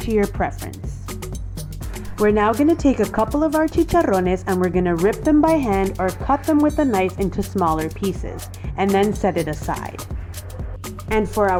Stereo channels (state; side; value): identical; both; correlation 1.00